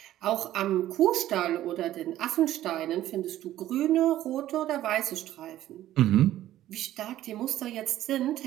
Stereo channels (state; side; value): quieter; left; 13.5 dB